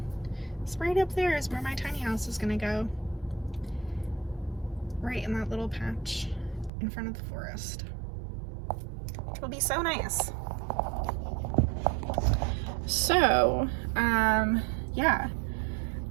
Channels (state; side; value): drops out; left; at 6.7 s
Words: is right up there is where my tiny house is gonna go. Right in that little patch in front of the forest. It'll be so nice. So, yeah,